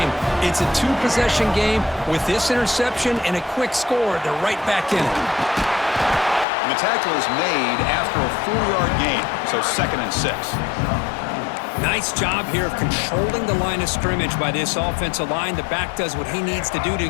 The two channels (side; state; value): right; drops out; at 6.5 s